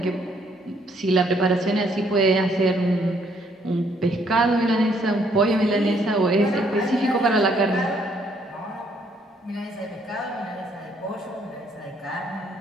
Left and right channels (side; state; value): both; normal; correlation 0.68